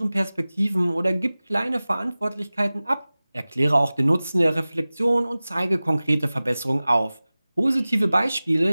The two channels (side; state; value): both; inverted; correlation -0.98